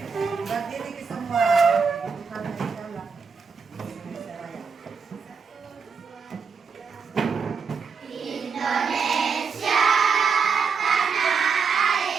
Berdiri ke semua.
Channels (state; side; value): quieter; left; 5.7 dB